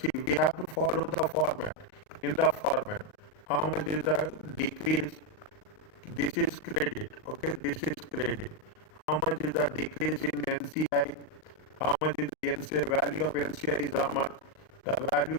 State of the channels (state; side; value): late; right; 39 ms